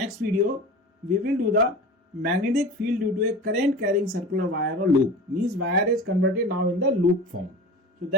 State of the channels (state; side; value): normal; both; correlation 0.35